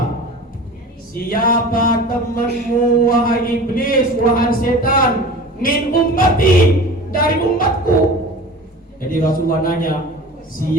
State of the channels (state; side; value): normal; both; correlation 0.38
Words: Siapa temanmu wahai iblis, wahai setan? Min ummati, dari umatku. Jadi Rasulullah nanya,